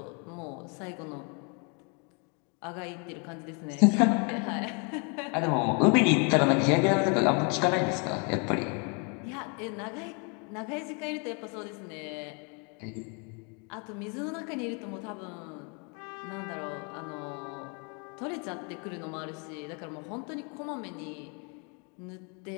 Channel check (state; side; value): quieter; right; 35.3 dB